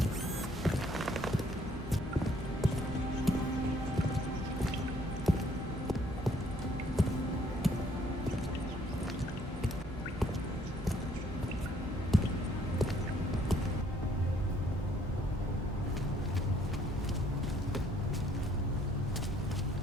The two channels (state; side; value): normal; both; correlation 0.64